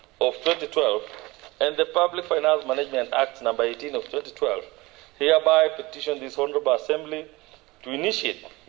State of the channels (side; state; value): left; quieter; 21.8 dB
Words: of 2012, and the Public Finance Management Act number 18 of 2012, hereby petition this Honorable Assembly to initiate